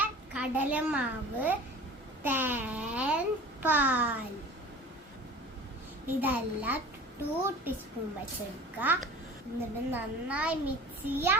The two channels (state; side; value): normal; both; correlation 0.40